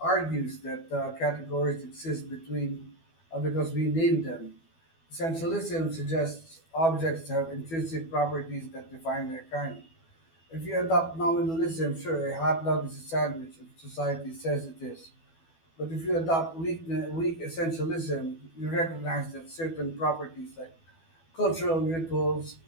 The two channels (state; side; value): late; right; 12 ms